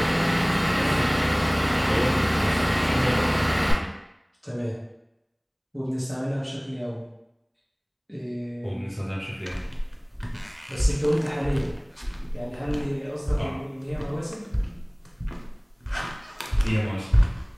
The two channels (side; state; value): both; identical; correlation 1.00